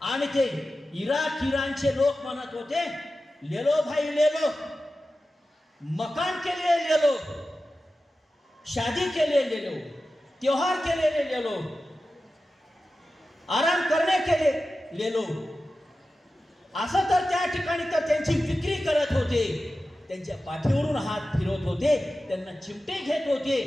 आणि ते इराणचे लोक म्हणत होते, ले लो भाई ले लो, मकान के लिए ले लो, शादी के लिए ले लो, त्योहार के लिए ले लो, आराम करने के लिए ले लो. असं तर त्या ठिकाणी तर त्यांची विक्री करत होते. त्यांच्या पाठीवरून हात फिरवत होते, त्यांना चिमटे घेत होते.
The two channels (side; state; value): both; normal; correlation 0.94